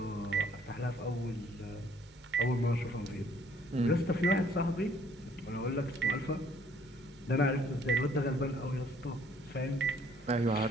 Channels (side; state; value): both; normal; correlation 0.61